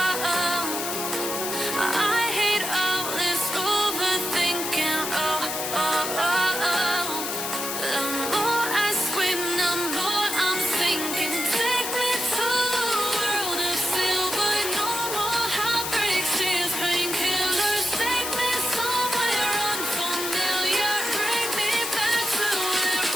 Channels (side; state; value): left; noise; hiss, 3 dB below the sound